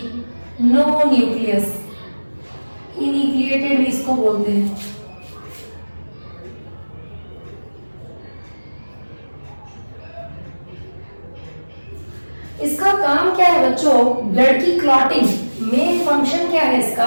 नो न्यूक्लियस, इन्यूक्लिएटेड भी इसको बोलते हैं। इसका काम क्या है बच्चों, ब्लड की क्लॉटिंग। मेन फंक्शन क्या है इसका,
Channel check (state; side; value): inverted; both; correlation -1.00